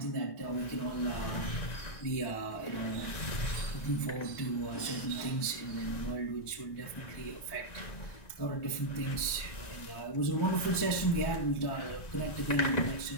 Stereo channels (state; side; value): late; right; 1.4 ms